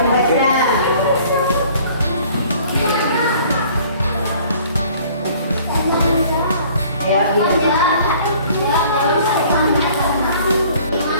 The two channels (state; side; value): inverted; both; correlation -0.54